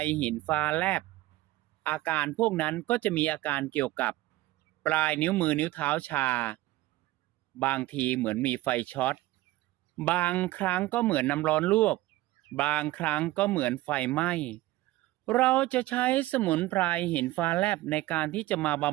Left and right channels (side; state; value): left; quieter; 17.4 dB